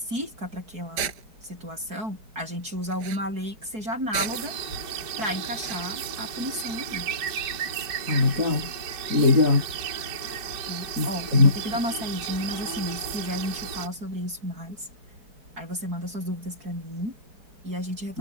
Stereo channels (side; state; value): left; late; 4.6 ms